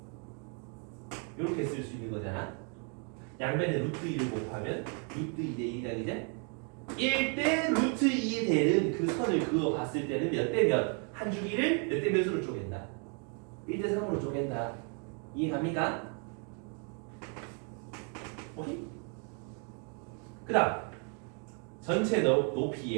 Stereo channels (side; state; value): left; quieter; 39.9 dB